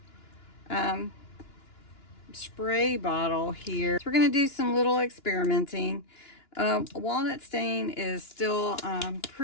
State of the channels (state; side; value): late; right; 2.9 ms